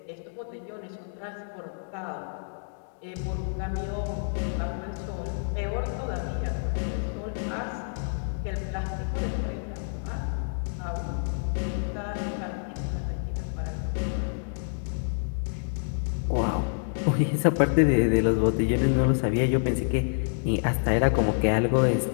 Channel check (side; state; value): right; silent; digital silence